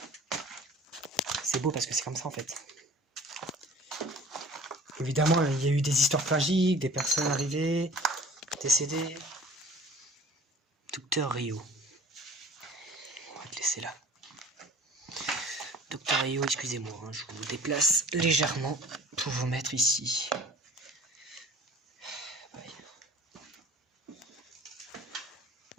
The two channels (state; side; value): normal; both; correlation 0.46